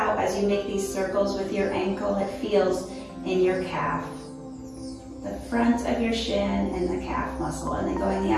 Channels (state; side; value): identical; both; correlation 1.00